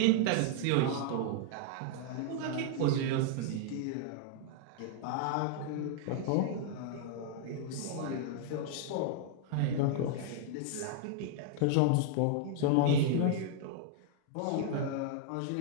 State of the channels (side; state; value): both; different; correlation 0.00